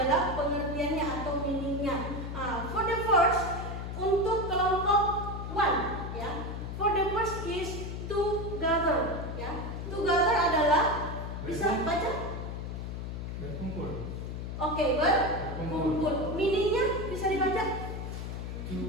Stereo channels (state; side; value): noise; left; hum, 6 dB below the sound